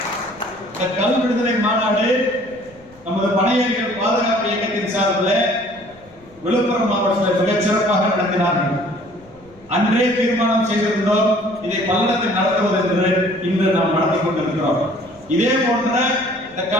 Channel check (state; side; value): noise; left; rumble, 27 dB below the sound